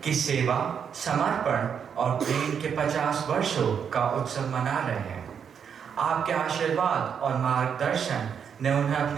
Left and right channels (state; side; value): quieter; left; 7.4 dB